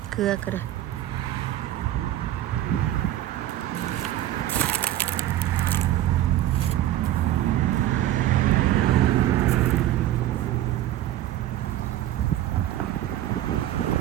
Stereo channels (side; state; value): left; quieter; 13.3 dB